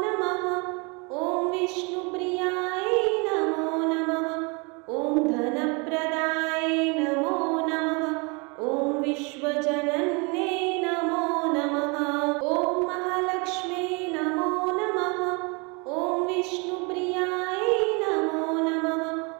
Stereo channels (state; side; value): quieter; left; 30.6 dB